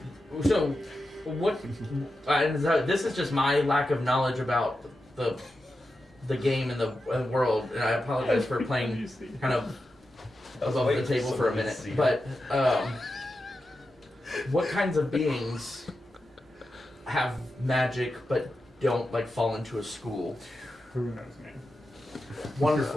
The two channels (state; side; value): normal; both; correlation 0.90